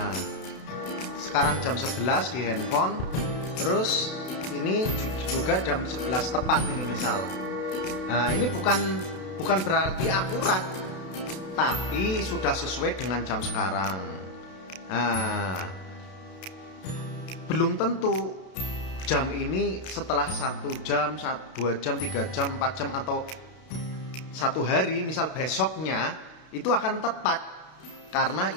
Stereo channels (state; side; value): late; right; 32 ms